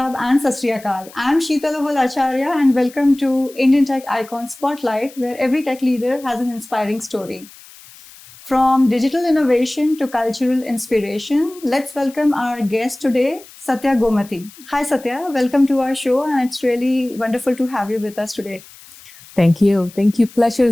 and Sat Sri Akal. I'm Sheetal Acharya and welcome to Indian Tech Icon Spotlight, where every tech leader has an inspiring story. From digital innovation to cultural inspiration, let's welcome our guest today, Sathye Gomathy. Hi Sathya, welcome to our show and it's really wonderful to have you with us today. Thank you. Pleasure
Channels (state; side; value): noise; left; hiss, 21 dB below the sound